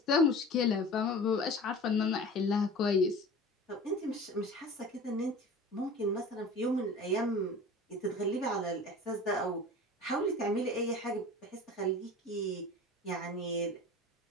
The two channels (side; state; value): both; normal; correlation 0.38